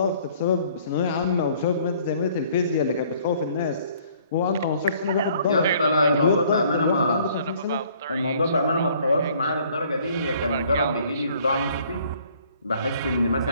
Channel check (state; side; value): inverted; both; correlation -0.59